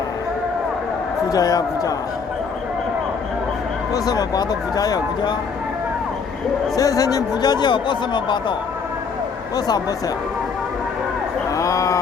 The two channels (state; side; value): quieter; right; 5.6 dB